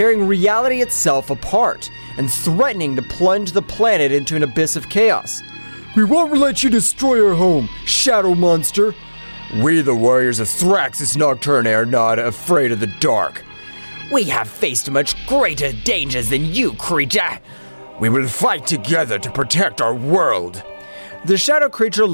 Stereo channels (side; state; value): both; inverted; correlation -1.00